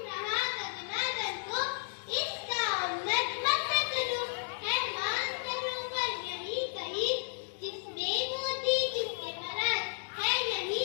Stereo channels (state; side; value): silent; right; digital silence